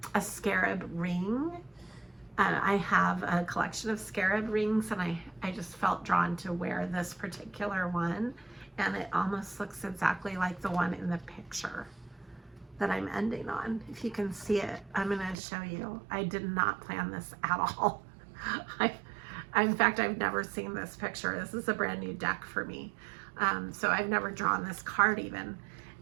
a scarab ring. I have a collection of scarab rings, and I just felt drawn to wear this particular one, and it almost looks exactly like the one in the picture that I'm ending on. If you can see it, I'm going to show you. I did not plan this at all. In fact, I've never seen this picture. This is a brand new deck for me. So I've never drawn this card even.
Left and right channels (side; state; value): left; drops out; at 15.4 s